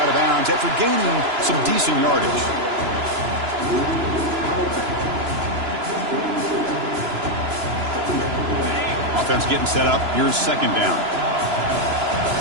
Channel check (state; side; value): late; left; 3.0 ms